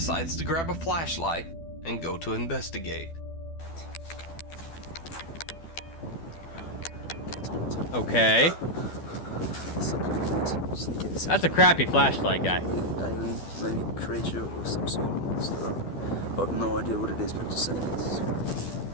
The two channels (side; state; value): right; late; 12 ms